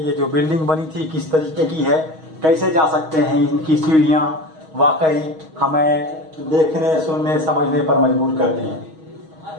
जो बिल्डिंग बनी थी किस तरीके की है, कैसे जा सकते हैं इनकी सीढ़ियाँ, वाकई हमें देखने, सुनने, समझने पर मजबूर करती हैं।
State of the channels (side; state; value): left; late; 6.3 ms